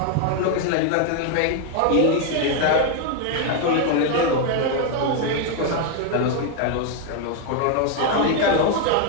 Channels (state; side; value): different; both; correlation 0.01